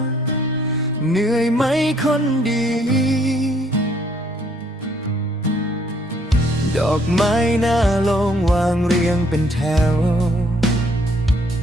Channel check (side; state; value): both; normal; correlation 0.65